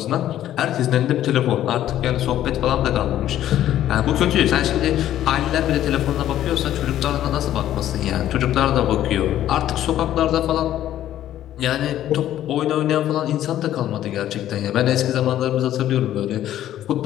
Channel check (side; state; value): right; quieter; 12.2 dB